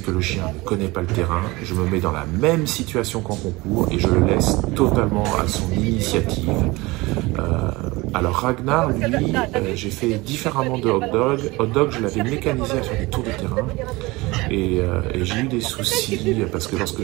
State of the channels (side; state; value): left; quieter; 22.2 dB